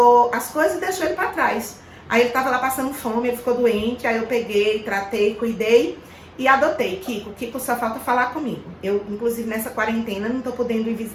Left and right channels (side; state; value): both; identical; correlation 1.00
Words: as coisas e deixou ele pra trás. Aí ele tava lá passando fome, ele ficou doente, aí eu peguei, tratei, cuidei e adotei Kiko. Kiko só falta falar comigo. Eu, inclusive, nessa quarentena, não tô podendo ir